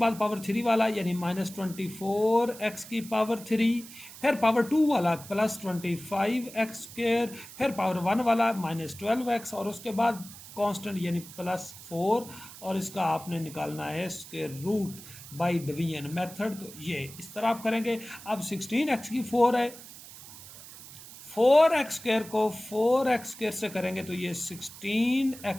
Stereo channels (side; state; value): right; noise; hiss, 16 dB below the sound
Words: पावर 3 वाला यानी -24x की पावर 3, फिर पावर 2 वाला +25x², फिर पावर 1 वाला -12x, और उसके बाद कांस्टेंट यानी +4, और इसका आपने निकालना है square root by division method. तो ये इस तरह आप करेंगे। अब 16x की 4 है, 4x² को 4x² से करेंगे तो ये